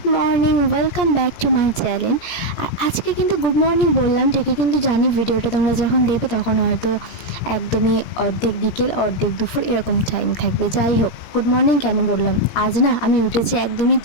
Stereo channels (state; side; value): late; right; 17 ms